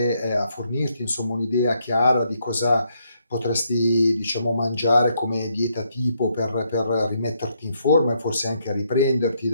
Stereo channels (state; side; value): inverted; both; correlation -0.75